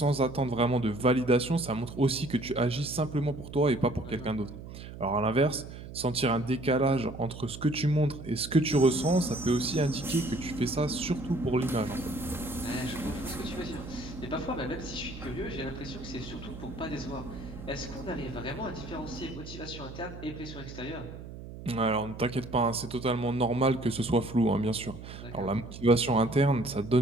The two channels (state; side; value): noise; right; hum, 12 dB below the sound